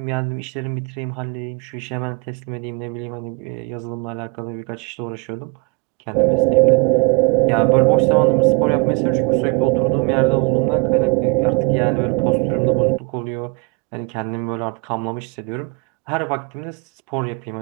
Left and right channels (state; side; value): quieter; left; 30.2 dB